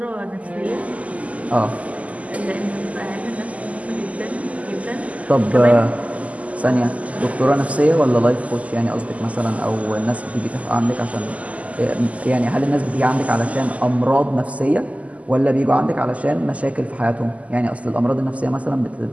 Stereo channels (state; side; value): late; left; 0.070 ms